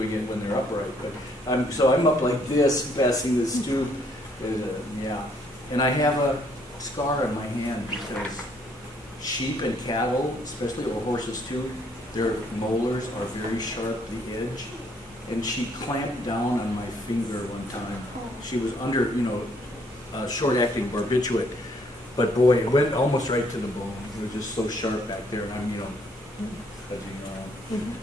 it when they're upright. But so I'm up like this, passing this tube. Yeah. And I have a scar on my hand because sheep and cattle, especially, or horses too, their molars are very sharp, the edge. And she clamped down on my finger one time. She was under, you know, short-acting barbiturate. But boy, it went almost right to the bone. It was just so sharp back there, and I'm, you know,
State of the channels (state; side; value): normal; both; correlation 0.67